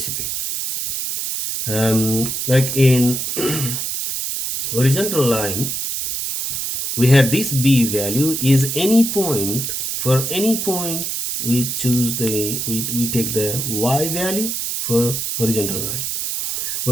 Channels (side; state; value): right; noise; hiss, 2 dB below the sound